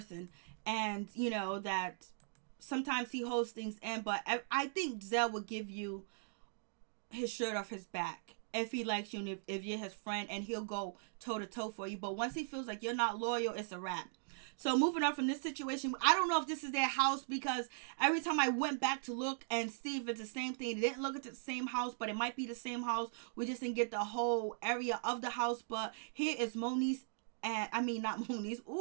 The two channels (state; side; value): silent; left; digital silence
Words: and you know that sometimes he holds things in, but I think Zell would give you his shirt off his back if he likes you, and if you're his friend, and he'll go toe to toe for you. But once he feels like you're not loyal, it's a wrap. So moving on from this situation, I don't know if this is their house, because every time I went back to look and see if it's the same thing, it didn't look at the same house, but it might be the same house. We just didn't get the whole area of the house. But here is Moniece, and I mean not Moniece.